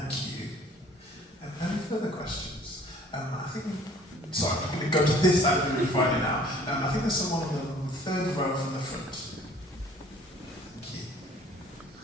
you. Any further questions? I think, sorry, I'm going to go to this side of the room right now. I think there's someone on the third row from the front.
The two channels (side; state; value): both; normal; correlation 0.54